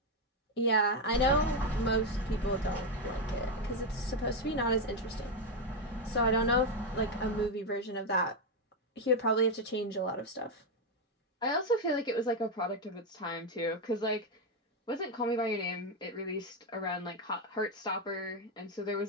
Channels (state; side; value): normal; both; correlation 0.06